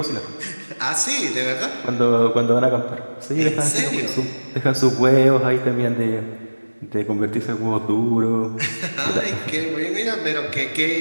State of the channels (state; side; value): inverted; both; correlation -1.00